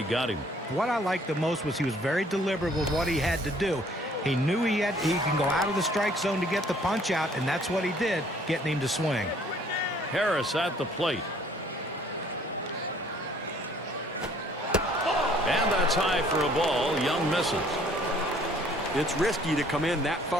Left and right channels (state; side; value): normal; both; correlation 0.59